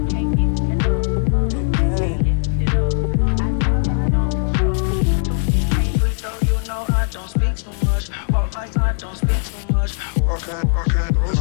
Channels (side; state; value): right; silent; 56 dB below the other